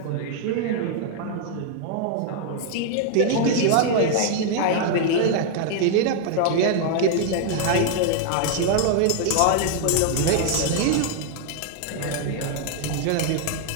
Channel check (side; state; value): both; different; correlation 0.00